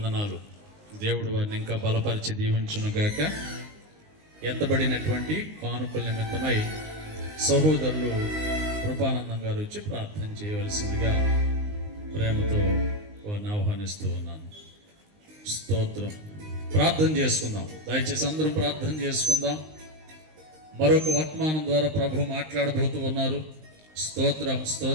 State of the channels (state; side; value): late; left; 19 ms